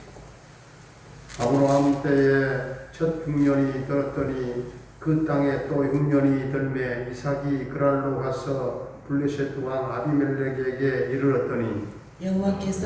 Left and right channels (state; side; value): identical; both; correlation 1.00